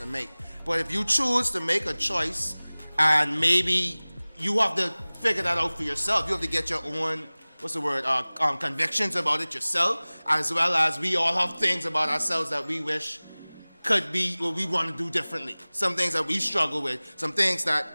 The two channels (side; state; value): both; inverted; correlation -1.00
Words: make. But if you choose to make a choice, and maybe you have to figure that out for yourself, you have to get your own. Convictions about it yourself, as well as we all have things about ourselves that we wish could be what we want to do differently. Some things that we struggle with, some things that